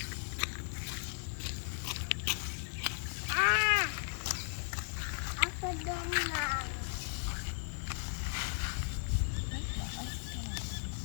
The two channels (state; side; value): silent; right; digital silence